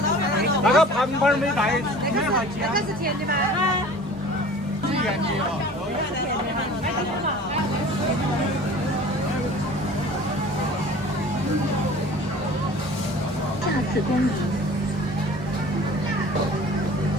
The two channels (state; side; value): normal; both; correlation 0.44